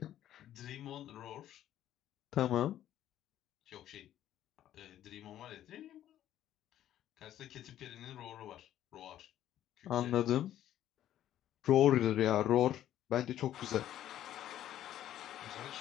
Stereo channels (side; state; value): right; quieter; 12.0 dB